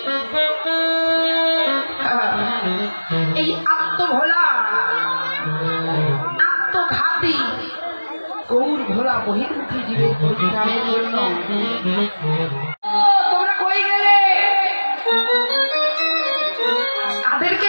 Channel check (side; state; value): both; inverted; correlation -1.00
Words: এই আত্মভোলা আত্মঘাতী গৌর ভোলা বহির্মুখী জীবের পরিত্রাণের জন্য তোমরা কই গেলে? তাদেরকে